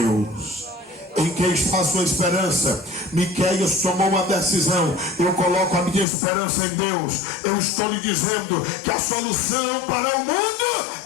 Em quem está a sua esperança? Miqueias tomou uma decisão: eu coloco a minha esperança em Deus. Eu estou lhe dizendo que a solução para o mundo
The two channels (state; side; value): drops out; right; at 6.1 s